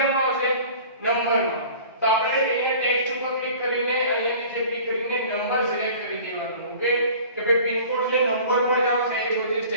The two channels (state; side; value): inverted; both; correlation -0.45